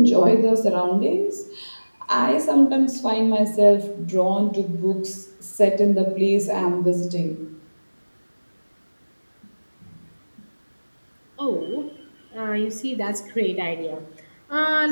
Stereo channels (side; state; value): both; inverted; correlation -1.00